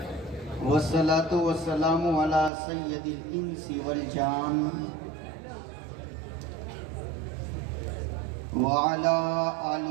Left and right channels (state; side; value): drops out; left; at 2.5 s